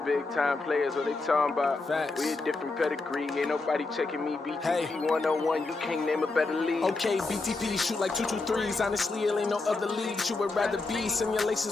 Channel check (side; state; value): right; quieter; 3.5 dB